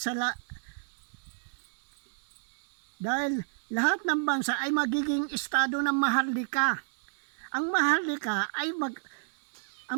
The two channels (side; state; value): left; silent; digital silence